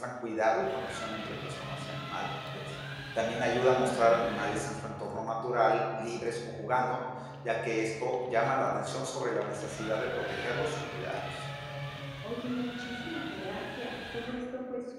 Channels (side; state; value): both; identical; correlation 1.00